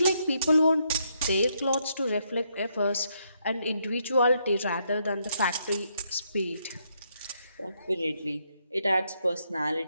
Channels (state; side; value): inverted; both; correlation -0.76